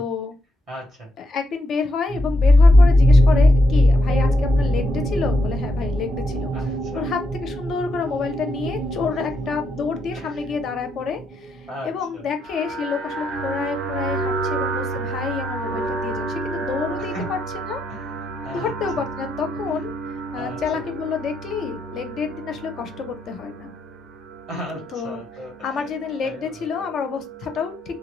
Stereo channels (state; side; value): normal; both; correlation 0.80